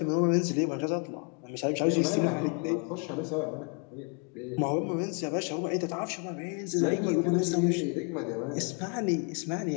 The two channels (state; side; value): quieter; right; 34.3 dB